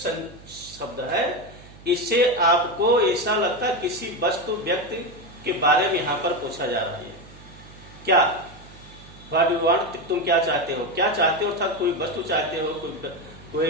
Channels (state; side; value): noise; right; hum, 20 dB below the sound